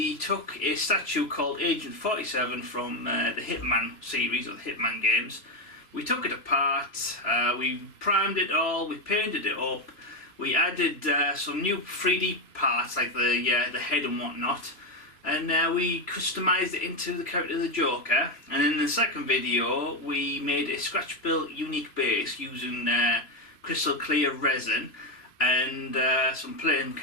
took a statue called Agent 47 from the Hitman series, or the Hitman games. We took it apart, we primed it all, we painted it up, we added some new 3D parts like the head and whatnot, and we customised it into the character of the Joker. And in the second video, we made a scratch-built unique base using crystal clear resin and some playing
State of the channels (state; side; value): late; right; 3.0 ms